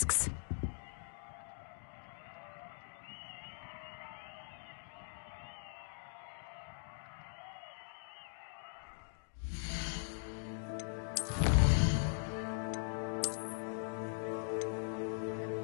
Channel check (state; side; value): silent; right; digital silence